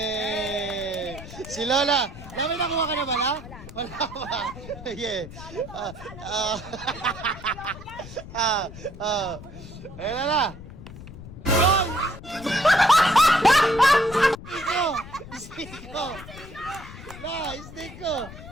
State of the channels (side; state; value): left; noise; rumble, 14 dB below the sound